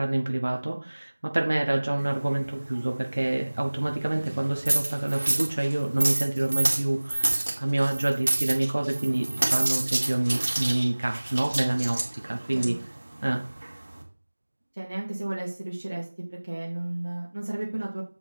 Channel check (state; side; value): inverted; both; correlation -1.00